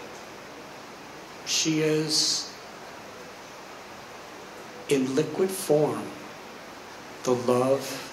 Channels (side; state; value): both; identical; correlation 1.00